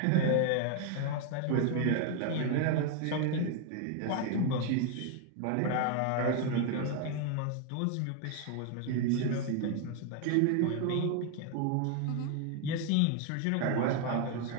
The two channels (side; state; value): both; different; correlation 0.00